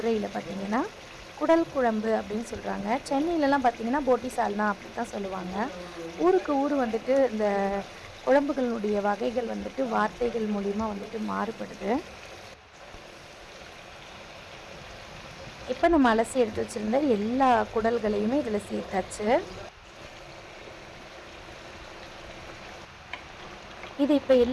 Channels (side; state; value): both; identical; correlation 1.00